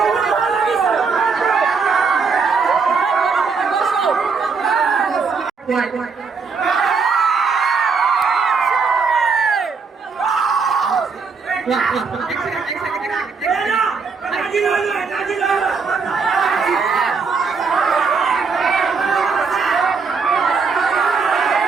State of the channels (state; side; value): quieter; left; 5.0 dB